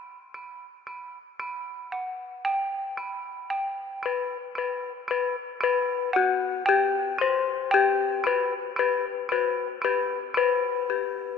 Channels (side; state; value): right; quieter; 4.0 dB